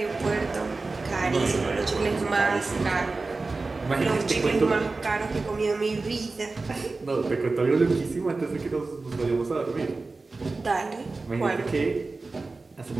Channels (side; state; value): left; quieter; 3.6 dB